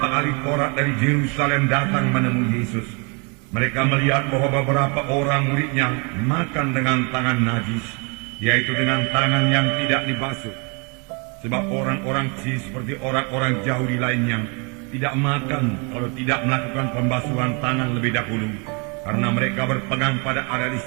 ahli Taurat dari Yerusalem datang menemui Yesus. Mereka melihat bahwa beberapa orang muridnya makan dengan tangan najis, yaitu dengan tangan yang tidak dibasuh. Sebab orang-orang seperti orang-orang Yahudi lainnya tidak makan kalau tidak melakukan pembasuhan tangan lebih dahulu, karena mereka berpegang pada adat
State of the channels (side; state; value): left; quieter; 33.3 dB